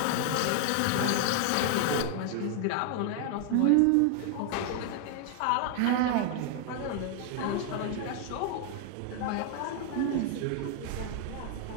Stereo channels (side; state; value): both; different; correlation 0.00